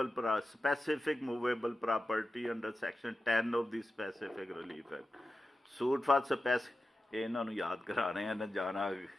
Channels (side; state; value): both; normal; correlation 0.93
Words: specific movable property under section 10 of the specific relief act. Suit for ਇਹਨਾਂ ਨੂੰ ਯਾਦ ਕਰਾਣੇ ਆ ਨਾ ਜਾਣਾ